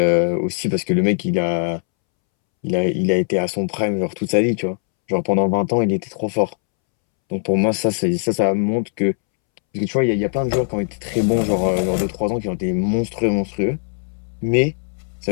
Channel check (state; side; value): silent; right; 66 dB below the other